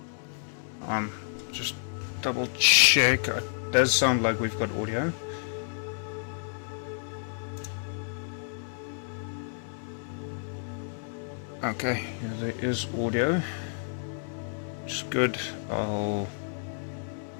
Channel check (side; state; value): right; silent; digital silence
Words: Just double check. It does sound like we've got audio. Okay, yeah, there is audio. Which is good. I'll